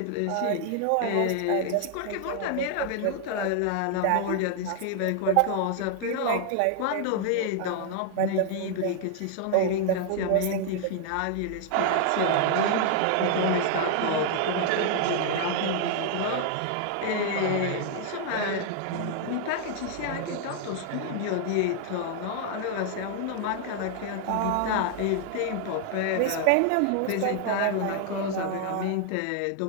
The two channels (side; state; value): both; different; correlation 0.00